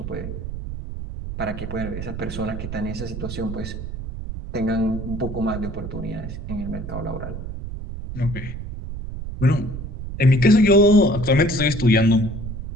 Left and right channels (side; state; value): right; noise; rumble, 7 dB below the sound